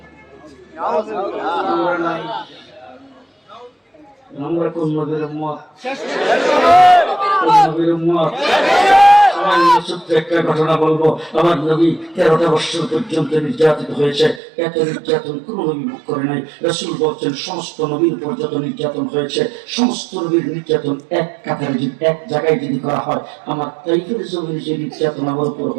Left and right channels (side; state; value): left; drops out; at 14.4 s